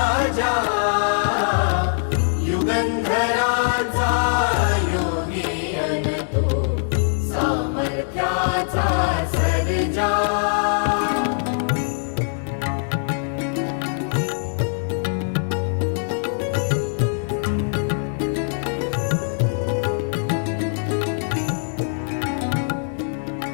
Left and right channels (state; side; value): silent; right; digital silence